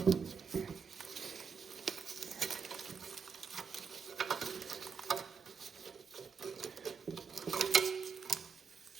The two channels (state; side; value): quieter; left; 5.9 dB